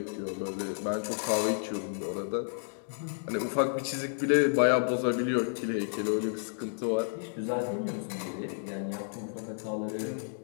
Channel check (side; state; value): right; silent; digital silence